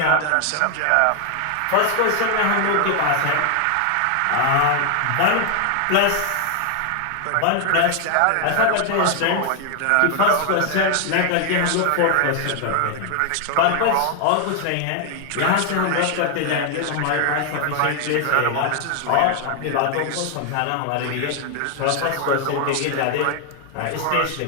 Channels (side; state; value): both; different; correlation 0.00